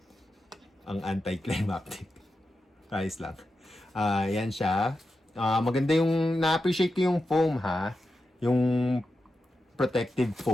Ang anticlimactic. Ayos lang. Yan siya. Maganda yung, na-appreciate ko yung foam ha. Yung protective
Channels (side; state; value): both; normal; correlation 0.90